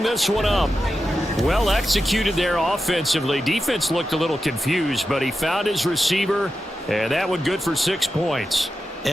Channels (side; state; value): both; normal; correlation 0.90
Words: this one up. Well executed there offensively. Defense looked a little confused, but he found his receiver, and that one good for 6 points.